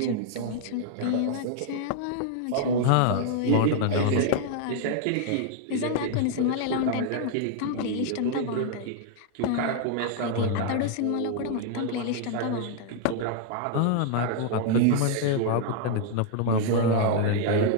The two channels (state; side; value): different; both; correlation -0.01